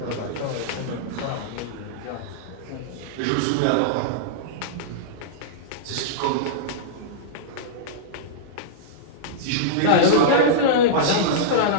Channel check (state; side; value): different; both; correlation -0.03